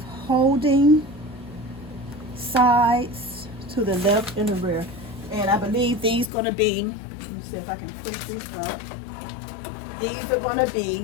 holding sides to the left and the rear. And I believe these gonna be, let me see if I can push this up. These are gonna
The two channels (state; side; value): drops out; right; at 6.3 s